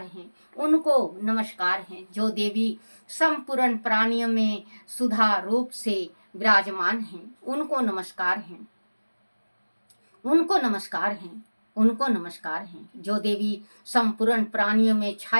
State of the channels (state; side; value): inverted; both; correlation -1.00